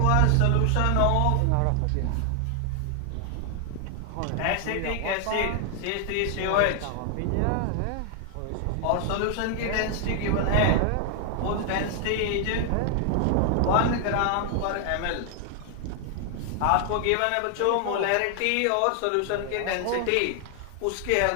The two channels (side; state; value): both; different; correlation 0.00